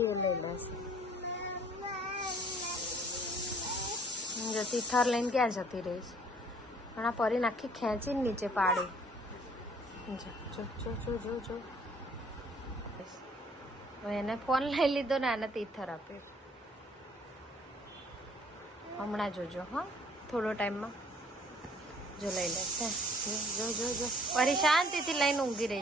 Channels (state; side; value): normal; both; correlation 0.58